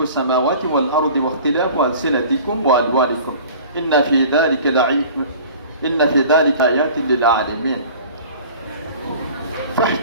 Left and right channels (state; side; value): inverted; both; correlation -0.44